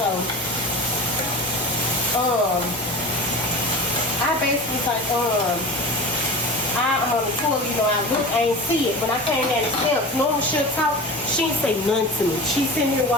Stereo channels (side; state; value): both; normal; correlation 0.34